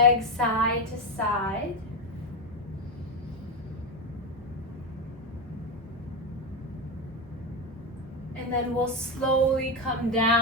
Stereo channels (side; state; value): both; normal; correlation 0.11